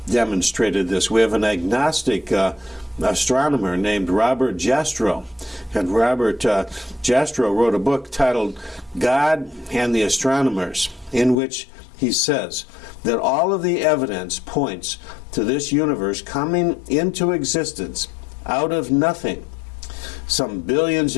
demonstrated this. We have an agnostic astronomer named Robert Jastrow. And Robert Jastrow wrote a book titled God and the Astronomers, in which he says that all of the evidence points to this universe coming into existence out of nothing some billions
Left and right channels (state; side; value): drops out; right; at 11.4 s